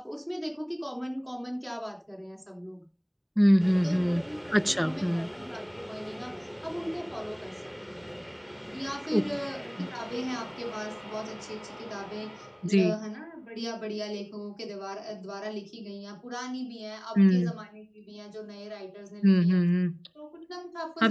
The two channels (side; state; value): both; identical; correlation 1.00